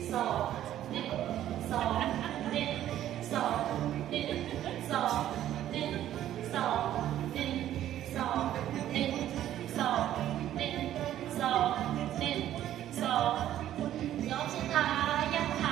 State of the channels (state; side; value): quieter; left; 12.2 dB